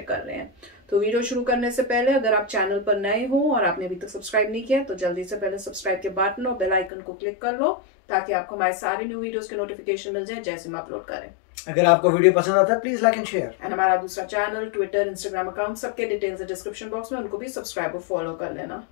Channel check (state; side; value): drops out; right; at 6.9 s